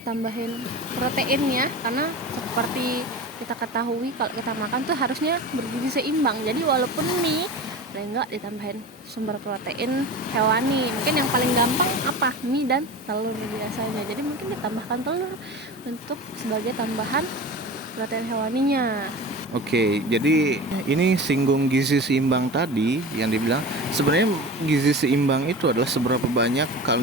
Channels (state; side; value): normal; both; correlation 0.32